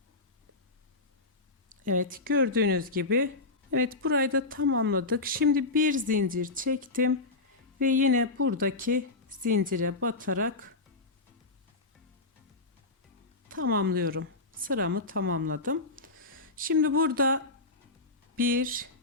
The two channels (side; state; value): right; quieter; 3.4 dB